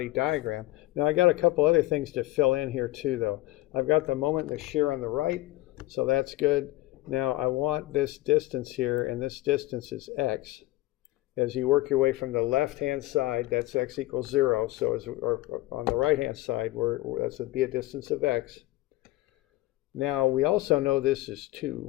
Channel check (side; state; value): right; quieter; 18.7 dB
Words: diagram. Now I got a couple other things to fill in here too, though. I've got the moment and the shear on the right, so that's good. Now I want this distance here, and this distance is x. As you work your way from the left-hand side, that's x equals 0. So or on the right-hand side, that's would be a distance of x. Now we also know this is